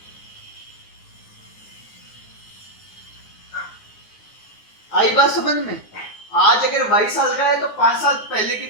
आई बात समझ में? आज अगर 22 साल का है तो 5 साल पहले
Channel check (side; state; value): right; late; 9.6 ms